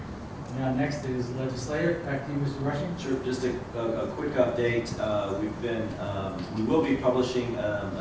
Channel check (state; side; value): identical; both; correlation 1.00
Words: Now, next is Legislative. Back to you, Mr. Rushing. Sure, just a quick update. We will be publishing